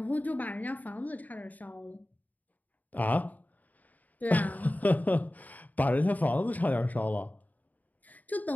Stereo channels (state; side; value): late; right; 0.078 ms